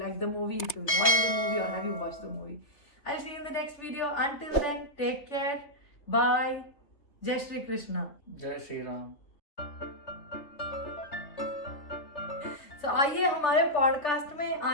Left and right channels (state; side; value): late; right; 3.3 ms